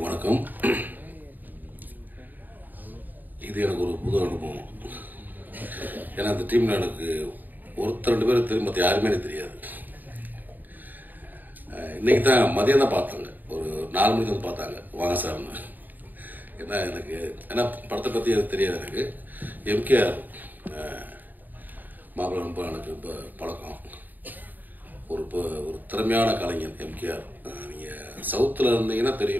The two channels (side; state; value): left; late; 0.087 ms